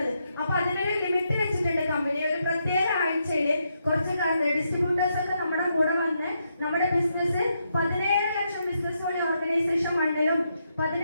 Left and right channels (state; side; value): inverted; both; correlation -0.81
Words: അപ്പൊ അതിനൊരു ലിമിറ്റ് വെച്ചിട്ടുണ്ട് കമ്പനി. ഒരു പ്രത്യേക ആഴ്ചയിൽ കുറച്ച് ഡിസ്ട്രിബ്യൂട്ടേഴ്സ് ഒക്കെ നമ്മുടെ കൂടെ വന്ന് നമ്മുടെ ബിസിനസ് 17 ലക്ഷം ബിസിനസ് വഴി ഓർഗനൈസേഷൻ 1